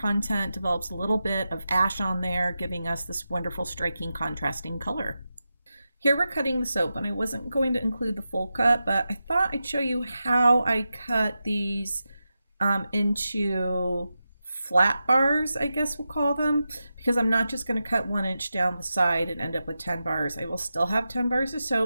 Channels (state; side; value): inverted; both; correlation -0.90